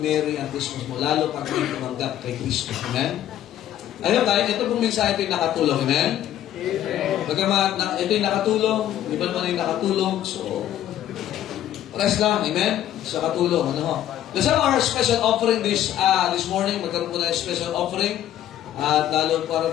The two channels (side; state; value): right; quieter; 11.8 dB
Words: merry ang Christmas mo. Lalo pag may tumanggap kay Kristo. Amen? Ayun tayo, ito pong mensahe ito yung nakatulong. Amen? Bagamat ito yung nakatulong, iba naman yung nakatulong. So, rest lang. Amen? Sa katulong. Ano ho? Let's have our special offering this morning. Magkaroon po na yung special offering. At lalo para